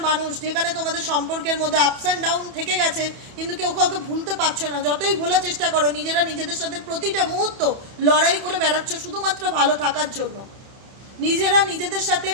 মানুষ, যেখানে তোমাদের সম্পর্কের মধ্যে আপস অ্যান্ড ডাউন থেকে গেছে, কিন্তু কেউ কাউকে ভুলতে পারছো না, যতই ভোলার চেষ্টা করো নিজেরা নিজেদের সাথে প্রতিটা মুহূর্ত লড়াই করে বেড়াচ্ছ শুধুমাত্র ভালো থাকার জন্য, নিজেরা নিজেদের সাথে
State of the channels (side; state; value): left; late; 31 ms